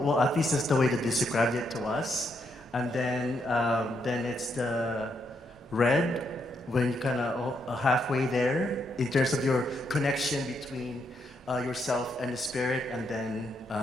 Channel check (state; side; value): normal; both; correlation 0.78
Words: at least that's the way that they described it to us. And then it's the red, when you kind of halfway there in terms of your connection between yourself and the spirit, and then